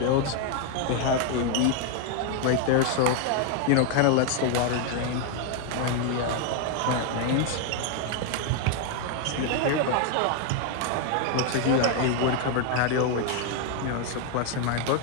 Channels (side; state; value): both; different; correlation 0.00